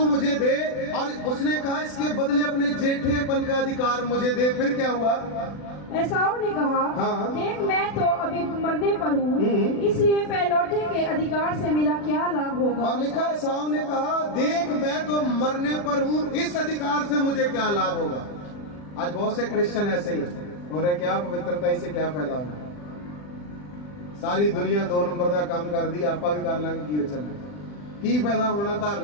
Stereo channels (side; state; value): right; late; 40 ms